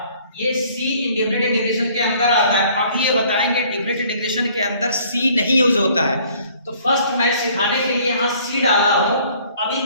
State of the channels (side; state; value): both; inverted; correlation -0.57